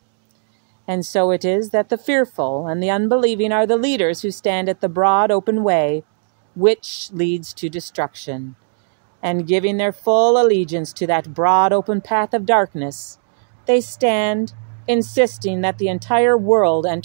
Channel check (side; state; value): left; silent; digital silence